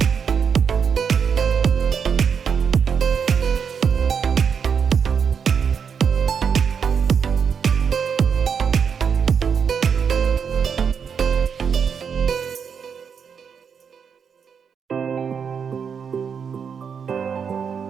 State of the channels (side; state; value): left; quieter; 6.8 dB